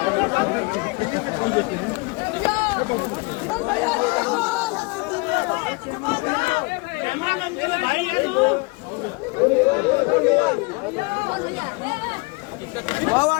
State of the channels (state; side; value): quieter; right; 27.5 dB